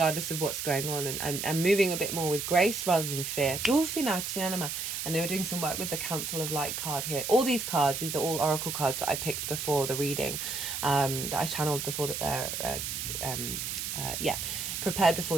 of what's going on, and moving a bit more with grace rather than fear. And they were doing some work with the Council of Light card here. All these cards, these are all oracle cards that I picked before the reading, that I channeled before the prepared before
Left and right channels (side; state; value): right; noise; hiss, 4 dB below the sound